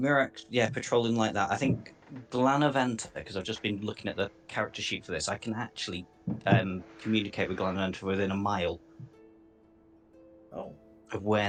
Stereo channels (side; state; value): both; identical; correlation 1.00